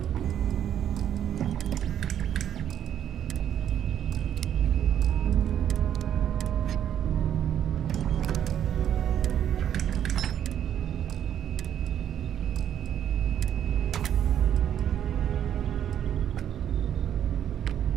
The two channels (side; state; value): left; quieter; 9.9 dB